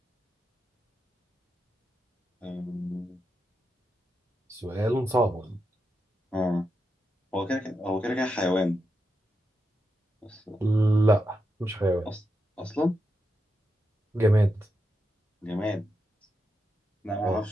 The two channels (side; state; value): both; normal; correlation 0.86